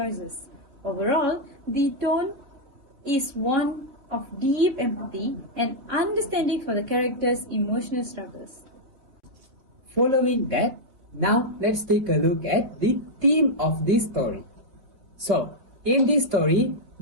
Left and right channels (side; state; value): left; late; 3.6 ms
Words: Overall, the tone is one of deep empathy and understanding for the characters' emotional struggles. Following that, now let's take a look at the theme of this story. So, in this story,